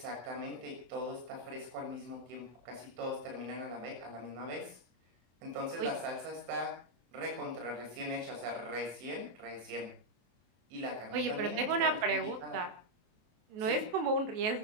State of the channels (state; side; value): late; left; 23 ms